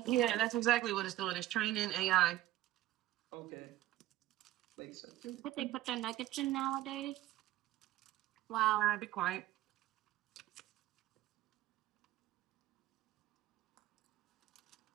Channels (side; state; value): left; quieter; 14.8 dB